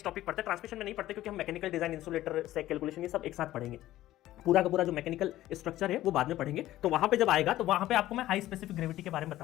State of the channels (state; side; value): quieter; right; 14.7 dB